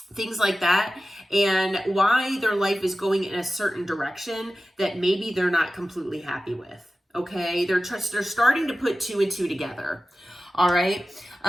things like that, and why their life is going in a certain direction that maybe they're not completely happy with. Okay, they're starting to put two and two together. All right.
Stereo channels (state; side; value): normal; both; correlation 0.95